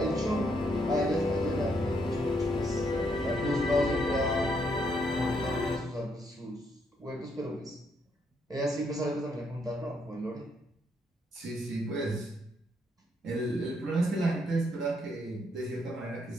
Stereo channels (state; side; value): normal; both; correlation 0.74